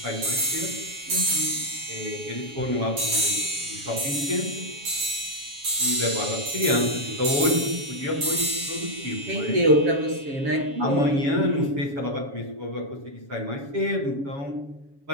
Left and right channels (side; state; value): left; late; 7.2 ms